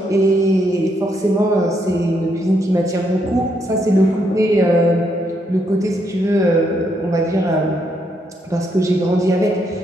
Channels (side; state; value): both; normal; correlation 0.76